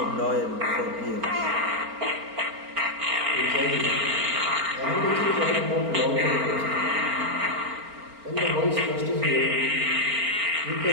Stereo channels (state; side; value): late; left; 4.4 ms